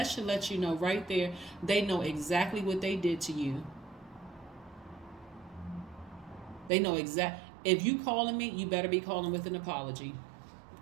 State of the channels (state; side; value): drops out; left; at 6.7 s